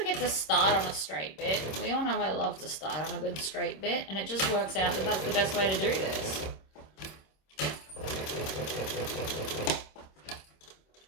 get to start on a straight bit. We all know I love to start on a good straight bit, and it just works out that that's the best way to do this.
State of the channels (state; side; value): late; right; 26 ms